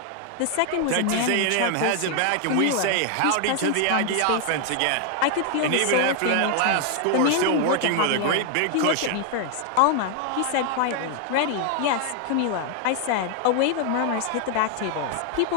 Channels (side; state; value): both; different; correlation 0.00